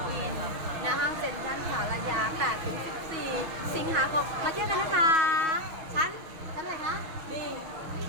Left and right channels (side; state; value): left; late; 6.2 ms